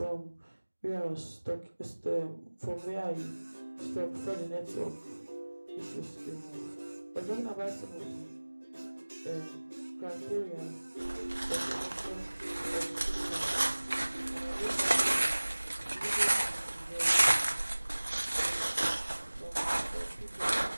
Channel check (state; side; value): inverted; both; correlation -1.00